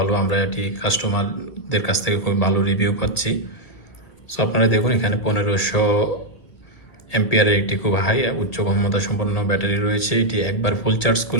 আমরা এটি কাস্টমারদের কাছ থেকে খুবই ভালো রিভিউ পাচ্ছি। সো আপনারা দেখুন, এখানে 1500 এম্পিয়ারের একটি খুব হাই উচ্চ ক্ষমতা সম্পন্ন ব্যাটারি রয়েছে। এটি একবার ফুল চার্জ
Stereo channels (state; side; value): late; right; 1.8 ms